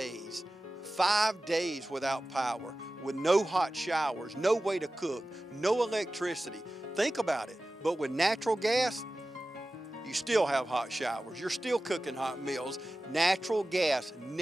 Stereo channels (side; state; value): both; normal; correlation 0.96